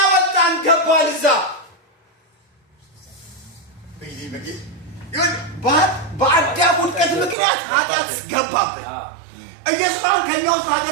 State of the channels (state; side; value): drops out; left; at 7.4 s